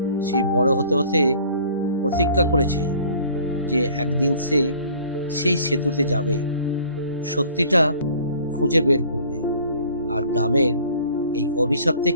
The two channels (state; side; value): inverted; both; correlation -0.52